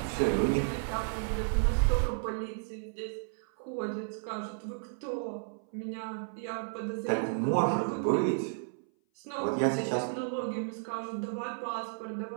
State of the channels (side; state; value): left; silent; 56 dB below the other